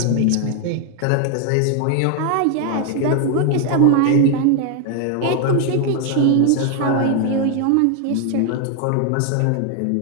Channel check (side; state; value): both; different; correlation 0.00